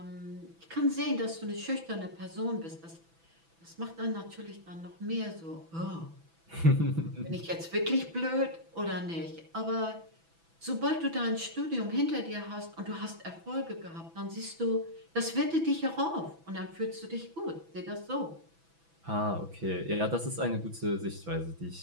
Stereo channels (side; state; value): left; late; 6.0 ms